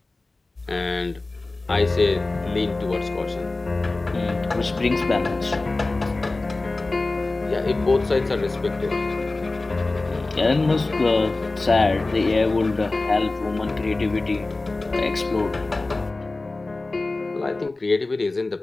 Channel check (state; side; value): quieter; right; 3.2 dB